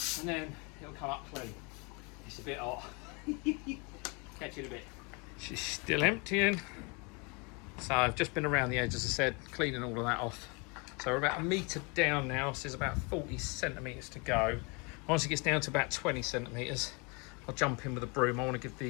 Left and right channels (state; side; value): quieter; right; 31.0 dB